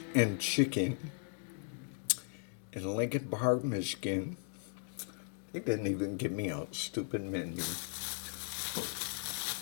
and Chicken in Lincoln Park, Michigan. They didn't even give me a stupid menu.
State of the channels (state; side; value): silent; right; 53 dB below the other